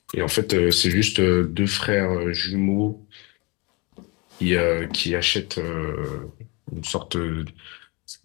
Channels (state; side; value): quieter; right; 28.3 dB